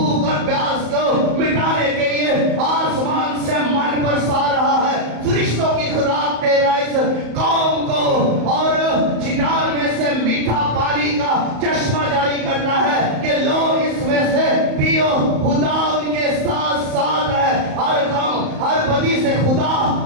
और प्यास को मिटाने के लिए आसमान से मन बरसा रहा है। फरिश्तों की खुराक दे रहा है इस कौम को और चिनार में से मीठा पानी का चश्मा जारी करता है कि लो इसमें से पियो। खुदा उनके साथ साथ है, हर गम हर बदी से खुदा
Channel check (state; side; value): late; left; 35 ms